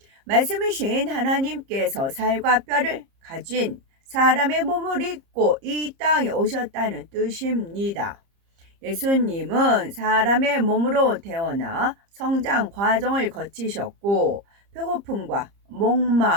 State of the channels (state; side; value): late; left; 30 ms